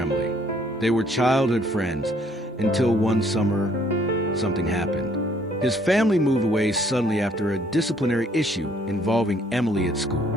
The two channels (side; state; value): both; normal; correlation 0.63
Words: They were childhood friends until one summer, something happened. His family moved away suddenly after a disciplinary issue involving Emily at school.